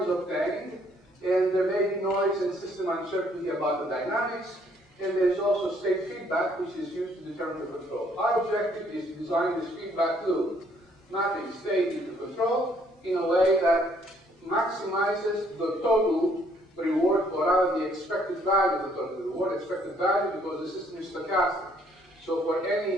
is obtained, and there may be noise and system uncertainty about the dynamics, and there's also state feedback, which is used to determine the control. Our objective is to design this feedback loop, mapping state into control in a way that maximizes the total reward, or rather the expected value of the total reward, expected value because the system is stochastic. So for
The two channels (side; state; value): both; normal; correlation 0.65